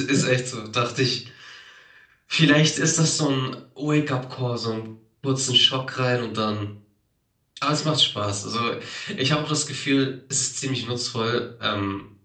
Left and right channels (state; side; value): identical; both; correlation 1.00